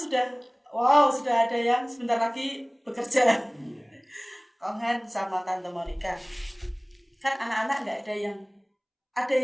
sudah ada yang sebentar lagi bekerja. Iya. Kong Han sama Tante Monica. Kan anak-anak nggak ada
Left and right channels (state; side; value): identical; both; correlation 1.00